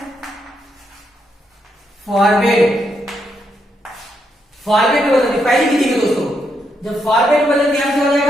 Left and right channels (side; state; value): both; normal; correlation 0.79